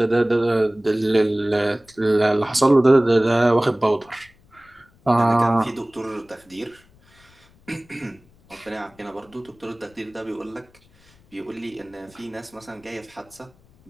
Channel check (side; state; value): left; noise; rumble, 30 dB below the sound